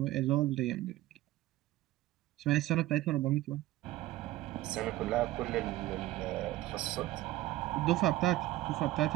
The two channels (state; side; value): quieter; left; 15.9 dB